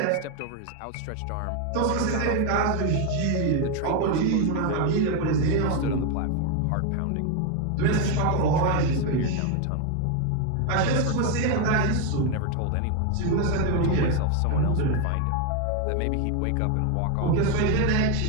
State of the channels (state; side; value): different; both; correlation 0.01